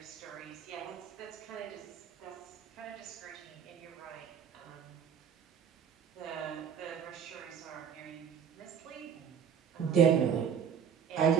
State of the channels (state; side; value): quieter; left; 7.7 dB